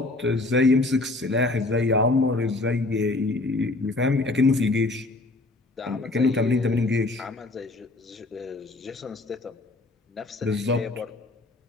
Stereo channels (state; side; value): quieter; right; 3.0 dB